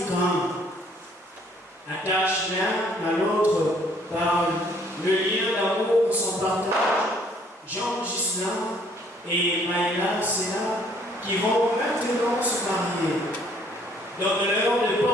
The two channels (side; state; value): both; normal; correlation 0.62